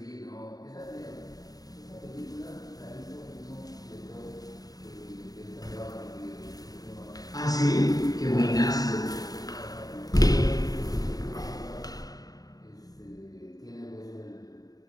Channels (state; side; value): late; right; 0.18 ms